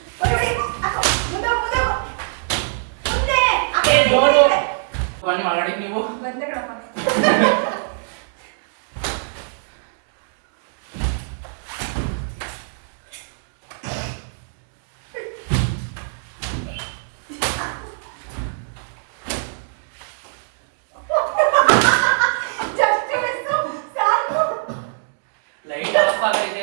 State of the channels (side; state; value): left; silent; digital silence